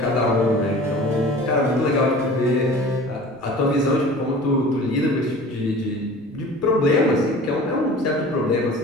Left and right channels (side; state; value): right; noise; rumble, 29 dB below the sound